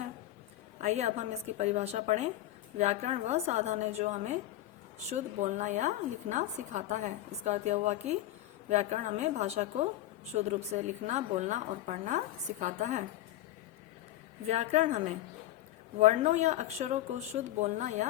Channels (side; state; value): right; quieter; 14.4 dB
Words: आइए अब हम इसकी परिभाषा पढ़ें। व्याकरण वह साधन है जो हमें शुद्ध बोलना या लिखना सिखाता है। इसका अर्थ यह हुआ कि व्याकरण हमें भाषा को शुद्ध रूप से लिखना, बोलना और पढ़ना सिखाता है। व्याकरण हमें वर्णों या अक्षरों को शुद्ध बोलना